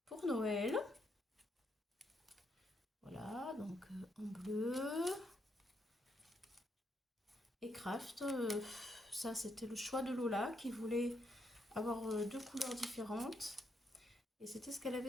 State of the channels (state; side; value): normal; both; correlation 0.77